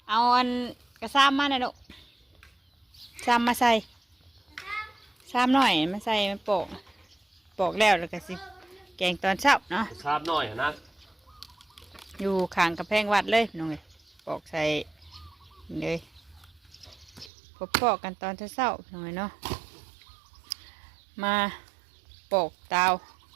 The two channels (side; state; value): left; drops out; at 17.3 s